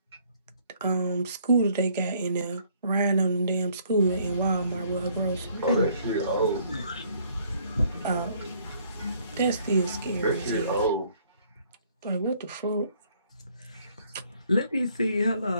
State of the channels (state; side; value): inverted; both; correlation -0.64